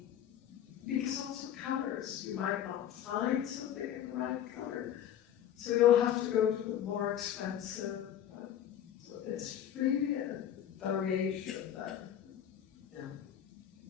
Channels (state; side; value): quieter; right; 10.4 dB